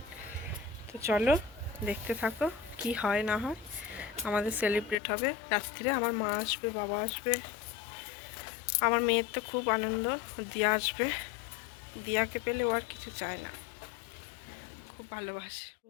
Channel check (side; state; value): right; drops out; at 5.0 s